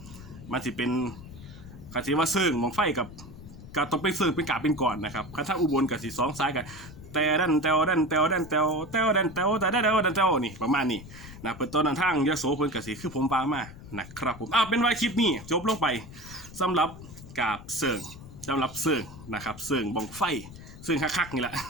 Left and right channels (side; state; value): left; noise; rumble, 16 dB below the sound